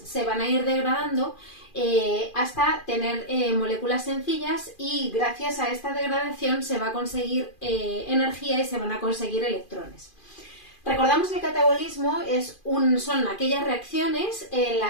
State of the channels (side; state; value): right; late; 2.4 ms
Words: van a ir degradando hasta tener moléculas sencillas y gracias a esta degradación se va a conseguir energía y se van a conseguir electrones. Recordamos que el catabolismo son aquellas reacciones en